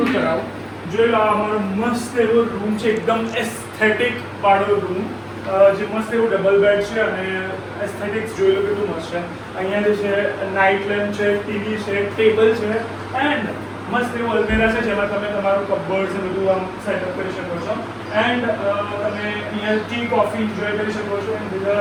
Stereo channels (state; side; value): identical; both; correlation 1.00